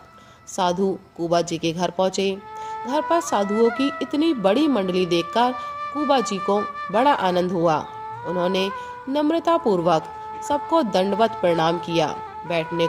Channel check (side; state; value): both; identical; correlation 1.00